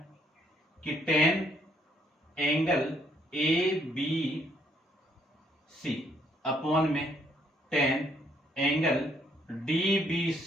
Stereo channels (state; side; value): normal; both; correlation 0.69